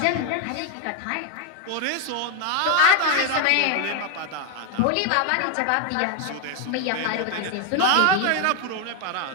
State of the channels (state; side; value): different; both; correlation 0.01